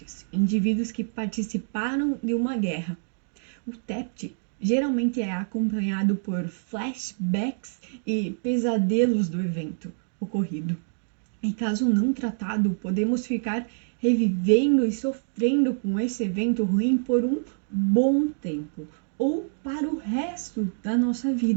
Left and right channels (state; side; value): silent; left; digital silence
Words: indivíduos que participaram de uma guerra. O TEPT geralmente é acompanhado por flashbacks e pesadelos do evento ocorrido. Em caso não tratado, podemos ficar revivendo e sofrendo com esse evento ruim por um bom tempo ou para o resto da nossa